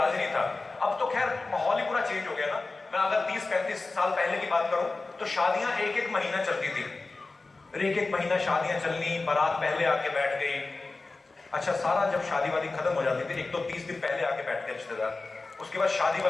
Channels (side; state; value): right; quieter; 3.6 dB